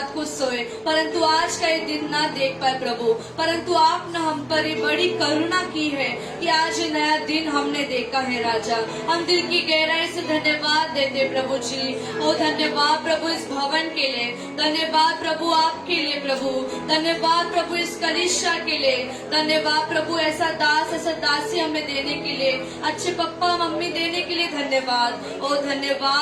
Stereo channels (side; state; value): both; identical; correlation 1.00